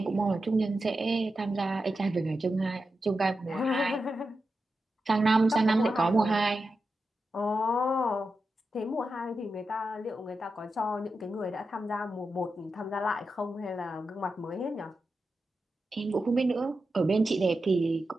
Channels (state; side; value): normal; both; correlation 0.90